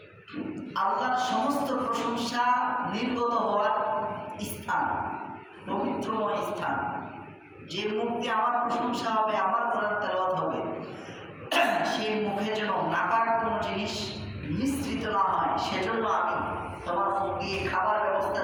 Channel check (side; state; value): both; identical; correlation 1.00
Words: আল্লাহর সমস্ত প্রশংসা নির্গত হওয়ার স্থান, পবিত্রময় স্থান। যে মুখ দিয়ে আমার প্রশংসা হবে, আমার কোরআন তেলাওয়াত হবে, সেই মুখে যেন নাপাক কোনো জিনিস মিশ্রিত না হয়, সেজন্য আমি তোমার মুখ দিয়ে খাবার ব্যবস্থা